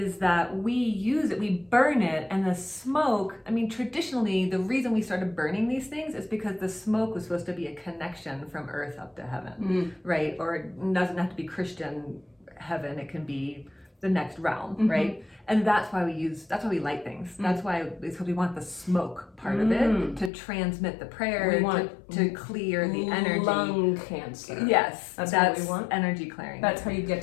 that we use it, we burn it, and the smoke, I mean, traditionally, the reason we started burning these things is because the smoke was supposed to be a connection from earth up to heaven, right? Or it doesn't have to be Christian heaven, it can be the next realm, right? And that's why we light things. That's why, because we want the smoke part of it to transmit the prayer, to clear the energy. Lung cancer. Yes, that's what we want. Energy clearing. That's how you get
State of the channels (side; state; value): right; drops out; at 20.3 s